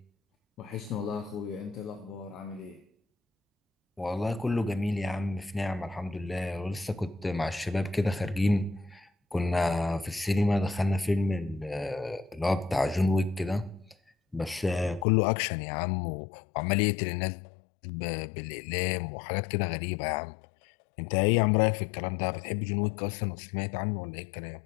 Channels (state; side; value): drops out; right; at 15.1 s